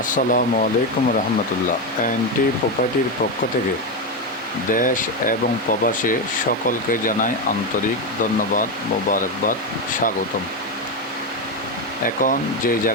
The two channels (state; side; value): normal; both; correlation 0.11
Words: আসসালামু আলাইকুম রহমতুল্লাহ। এনটি প্রপার্টির পক্ষ থেকে দেশ এবং প্রবাসে সকলকে জানাই আন্তরিক ধন্যবাদ, মোবারকবাদ, স্বাগতম। এখন যে